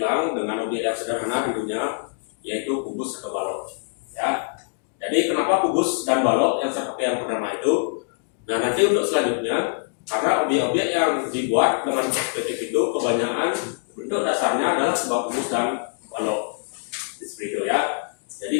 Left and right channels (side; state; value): right; silent; digital silence